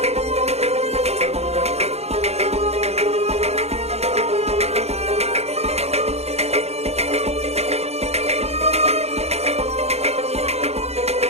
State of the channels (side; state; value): left; late; 0.31 ms